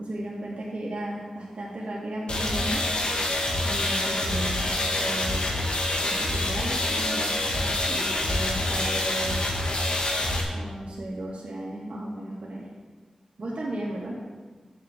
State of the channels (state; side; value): normal; both; correlation 0.67